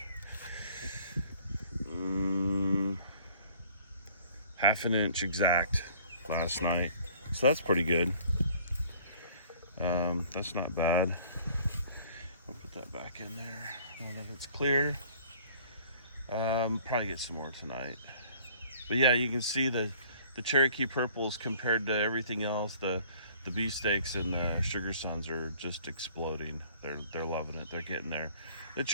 half an inch exact last night, so that's pretty good. That's not bad. I'll put that back in there now that it's clear. Probably get some more tonight. But yeah, you can see the Cherokee purples compared to everything else. The beefsteaks and the sugar suns are just exploding. They're loving it. They're getting there. The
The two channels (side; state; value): both; inverted; correlation -0.55